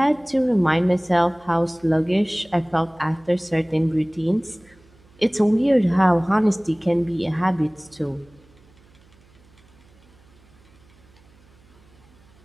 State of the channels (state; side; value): noise; right; hum, 29 dB below the sound